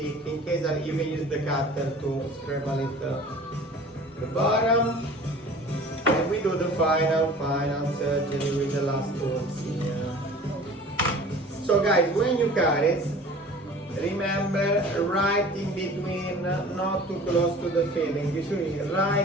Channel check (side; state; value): both; normal; correlation 0.44